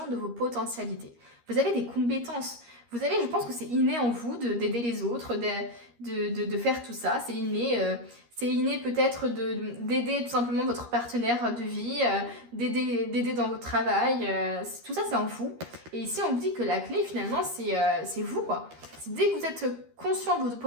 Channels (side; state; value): left; late; 13 ms